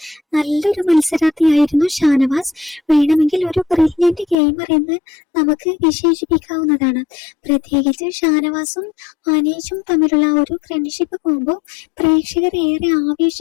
നല്ലൊരു മത്സരാർത്ഥിയായിരുന്നു ഷാനവാസ്. വേണമെങ്കിൽ ഒരു ബ്രില്യന്റ് ഗെയിമർ എന്ന് നമുക്ക് വിശേഷിപ്പിക്കാവുന്നതാണ്. പ്രത്യേകിച്ച് ഷാനവാസും അനീഷും തമ്മിലുള്ള ഒരു ഫ്രണ്ട്ഷിപ്പ് കോംബോ പ്രേക്ഷകർ ഏറെ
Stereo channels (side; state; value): right; drops out; at 4.4 s